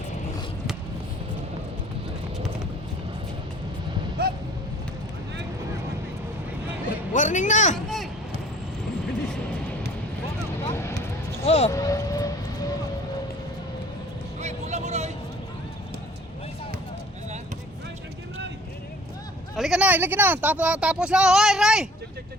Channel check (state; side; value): normal; both; correlation 0.51